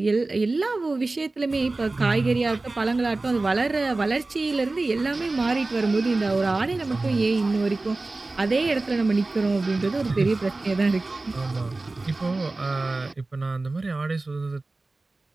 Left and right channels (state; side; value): quieter; left; 3.2 dB